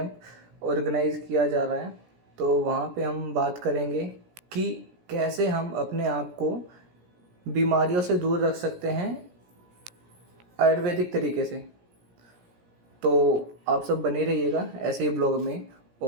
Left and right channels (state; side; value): late; left; 17 ms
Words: ऑर्गेनाइज किया जा रहा है। तो वहाँ पे हम बात करेंगे कि कैसे हम अपने आप को बीमारियों से दूर रख सकते हैं आयुर्वेदिक तरीके से। तो आप सब बने रहिएगा ऐसे ही ब्लॉग में।